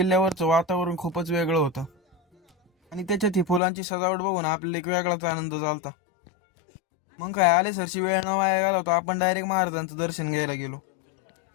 वातावरण खूपच वेगळं होतं. आणि त्याच्यात ही फुलांची सजावट बघून आपल्याला एक वेगळाच आनंद झालता. मग काय आले सरशी वेळ न वाया गेला होता. आपण डायरेक्ट महाराजांचं दर्शन घ्यायला गेलो.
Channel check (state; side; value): drops out; right; at 3.6 s